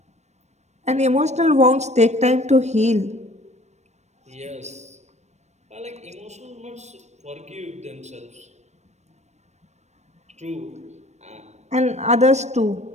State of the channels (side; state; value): left; late; 0.33 ms